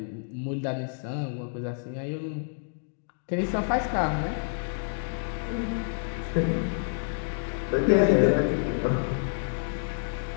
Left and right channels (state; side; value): silent; right; digital silence